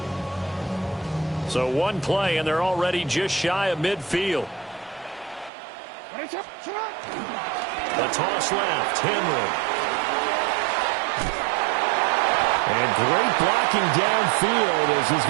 So one play, and they're already just shy of midfield. The toss left, Henry. And great blocking downfield as he's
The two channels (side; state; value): left; drops out; at 5.5 s